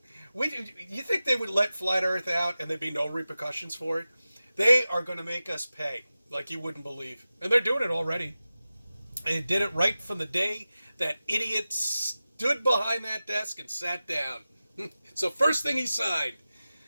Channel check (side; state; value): both; inverted; correlation -0.95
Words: You think they would let Flat Earth out and there'd be no repercussions for it? They are going to make us pay like you wouldn't believe, and they're doing it already. They did it right from the day that idiot stood behind that desk and sat down. So first thing he signed,